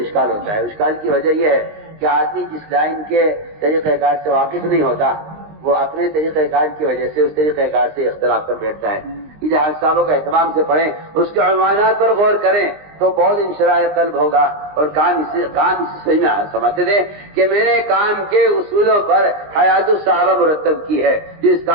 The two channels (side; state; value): left; late; 20 ms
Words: ہوتا ہے. اشکال کی وجہ یہ ہے کہ آدمی جس لائن کے طریقہ کار سے واقف نہیں ہوتا وہ اپنے طریقہ کار کی وجہ سے اس طریقہ کار سے اختلاف کر بیٹھتا ہے. یہ حیات صاحبوں کا اہتمام سے پڑھیں، اس کے عنوانات پر غور کریں تو بہت انشراح قلب ہوگا اور کام اسی صحیح میں سمجھتے تھے کہ میں نے کام کے اصولوں پر حیات الصحابہ مرتب کی ہے. جو اس